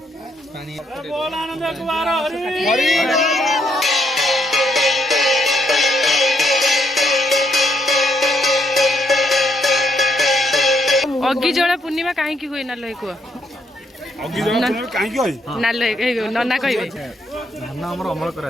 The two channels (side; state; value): both; normal; correlation 0.75